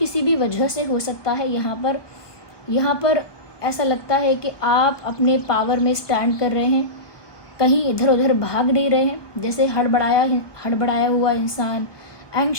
भी वजह से हो सकता है। यहाँ पर ऐसा लगता है कि आप अपने पावर में स्टैंड कर रहे हैं, कहीं इधर उधर भाग नहीं रहे हैं। जैसे हड़बड़ाया हुआ इंसान,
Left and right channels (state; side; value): late; right; 1.2 ms